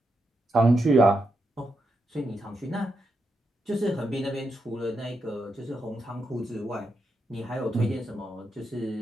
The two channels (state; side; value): normal; both; correlation 0.84